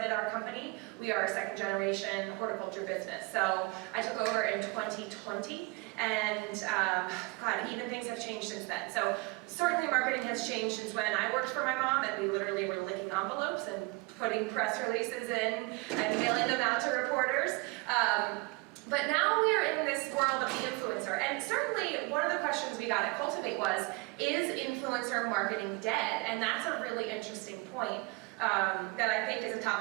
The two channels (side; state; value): left; quieter; 26.2 dB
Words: our company. We are a second generation horticulture business. So I took over in 2020, and God, even things have changed since then. So certainly marketing has changed since when I worked for my mom, and we literally were licking envelopes and putting press releases in and mailing them out to reporters. But now we are in this world of the influencer, and certainly one of the questions we got at Cultivate was, is influencer marketing dead? And that's a really interesting point that I think is a